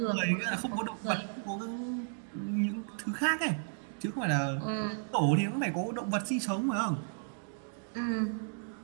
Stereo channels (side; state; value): left; silent; digital silence